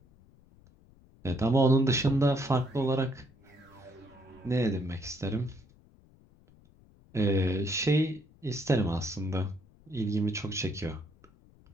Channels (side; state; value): left; noise; rumble, 27 dB below the sound